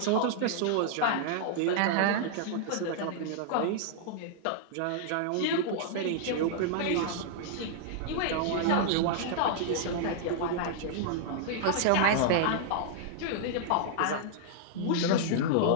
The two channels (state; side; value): different; both; correlation -0.01